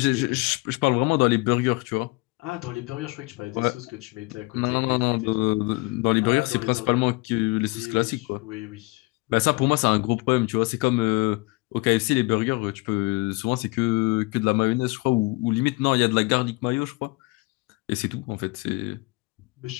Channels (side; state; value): right; quieter; 25.2 dB